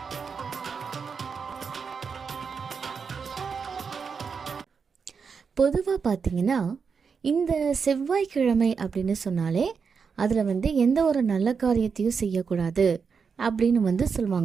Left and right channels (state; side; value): quieter; left; 5.8 dB